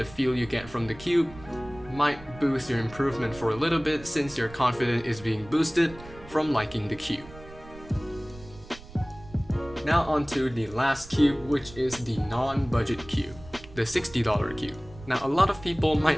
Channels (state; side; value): noise; right; rumble, 18 dB below the sound